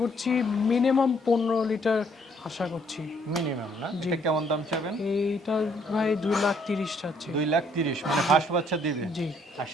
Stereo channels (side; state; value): both; normal; correlation 0.66